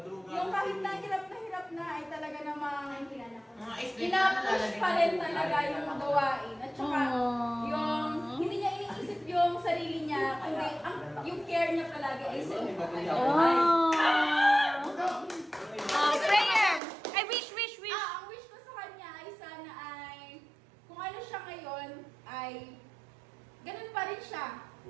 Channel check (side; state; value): left; drops out; at 16.8 s